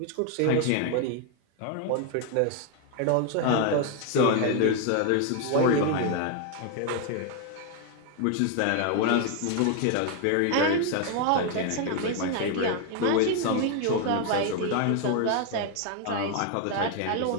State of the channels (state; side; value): different; both; correlation 0.01